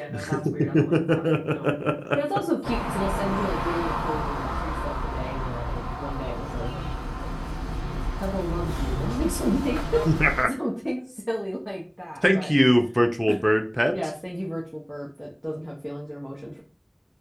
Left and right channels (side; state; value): both; identical; correlation 1.00